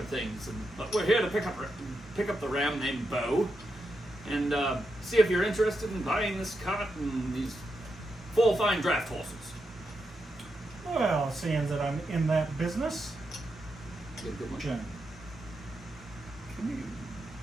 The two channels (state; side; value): normal; both; correlation 0.85